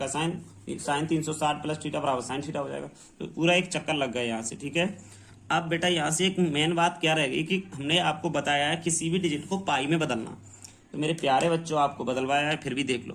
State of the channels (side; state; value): both; identical; correlation 1.00